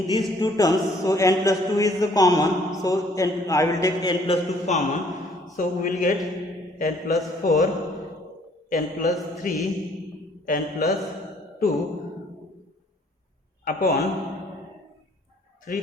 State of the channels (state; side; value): normal; both; correlation 0.60